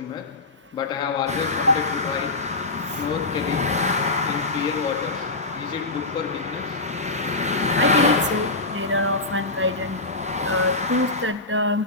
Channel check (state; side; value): quieter; right; 3.1 dB